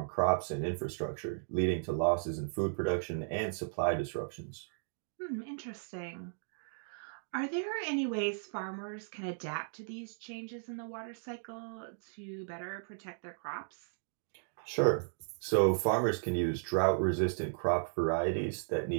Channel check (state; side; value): silent; left; digital silence